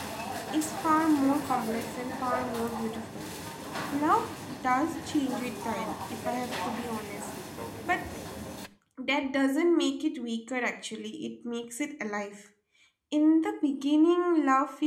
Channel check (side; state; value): both; identical; correlation 1.00